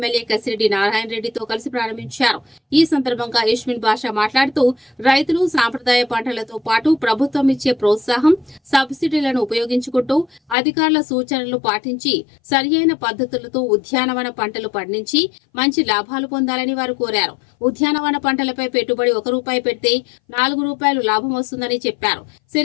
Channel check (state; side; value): drops out; right; at 10.6 s